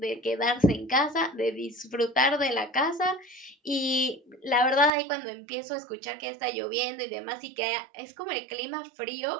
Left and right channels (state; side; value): drops out; left; at 4.9 s